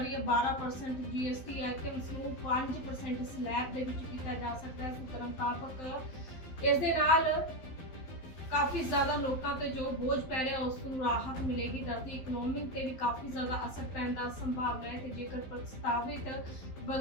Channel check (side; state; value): right; late; 12 ms